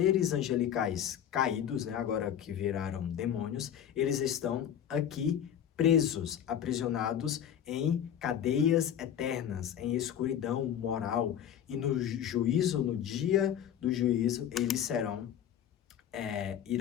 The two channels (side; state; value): right; quieter; 9.6 dB